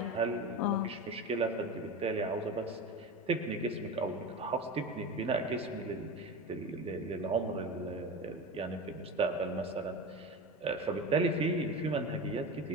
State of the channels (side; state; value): both; normal; correlation 0.26